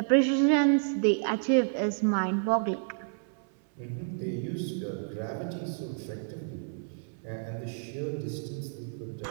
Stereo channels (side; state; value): left; silent; 58 dB below the other